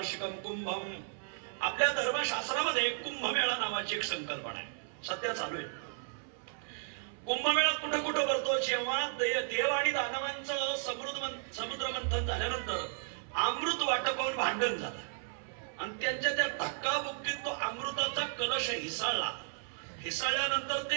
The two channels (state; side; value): silent; left; 55 dB below the other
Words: कुंभम. आपल्या धर्मशास्त्रामध्ये कुंभमेळा नावाची एक संकल्पना आहे, सध्या चालू आहे. कुंभमेळा कुठं कुठं भरतो? जेव्हा देव आणि दानवांचं समुद्र मंथन झाल्यानंतर अमृत वाटपावून भांडण झालं आणि त्यांच्या त्या धक्काबुक्कीत तो अमृताचा कलश हिसाळल्यानंतर ते